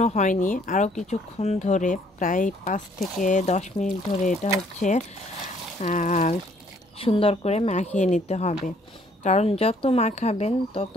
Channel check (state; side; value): normal; both; correlation 0.63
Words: হয়নি, আরও কিছুক্ষণ ধরে প্রায় 5 থেকে 10 মিনিট ধরে এটা হচ্ছে সুন্দর করে মাখিয়ে নিতে হবে। কারণ যত মাখাবেন তত